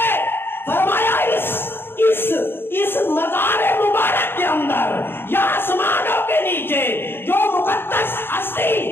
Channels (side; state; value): right; late; 0.10 ms